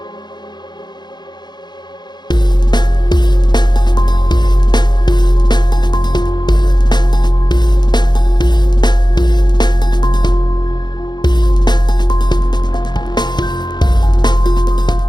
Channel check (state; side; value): late; right; 0.21 ms